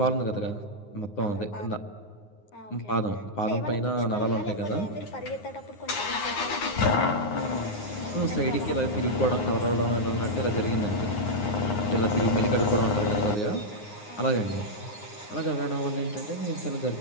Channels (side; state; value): right; late; 9.6 ms